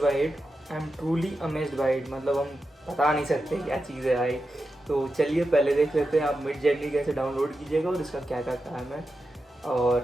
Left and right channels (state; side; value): normal; both; correlation 0.90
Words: bye it, मतलब हम बता नहीं सकते क्या चीज़ है भाई। तो चलिए पहले देख लेते हैं आप मिडजर्नी कैसे डाउनलोड कीजिएगा और इसका क्या क्या काम है,